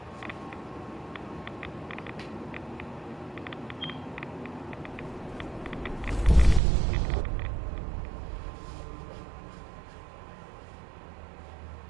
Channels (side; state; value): left; drops out; at 6.6 s